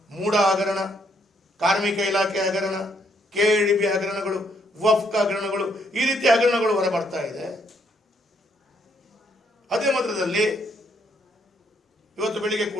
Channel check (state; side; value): normal; both; correlation 0.71